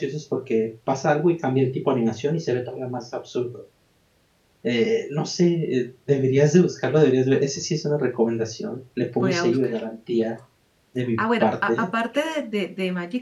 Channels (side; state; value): both; identical; correlation 1.00